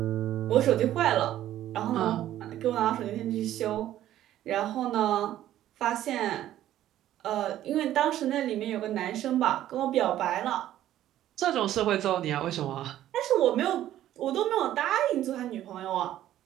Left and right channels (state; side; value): quieter; left; 12.7 dB